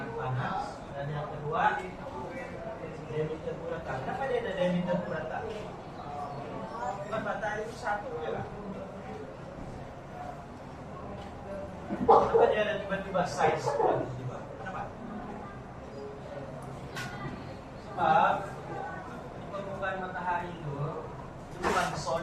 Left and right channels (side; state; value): both; identical; correlation 1.00